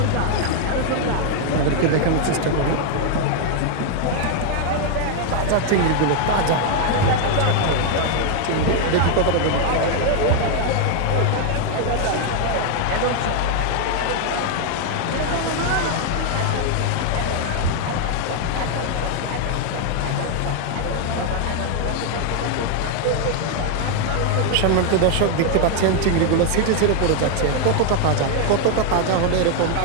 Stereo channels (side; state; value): both; different; correlation 0.00